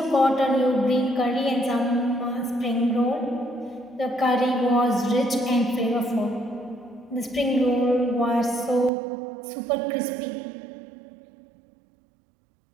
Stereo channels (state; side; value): drops out; left; at 8.9 s